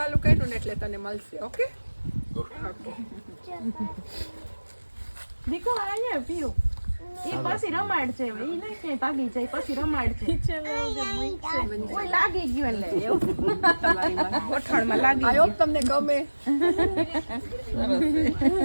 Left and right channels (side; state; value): both; inverted; correlation -1.00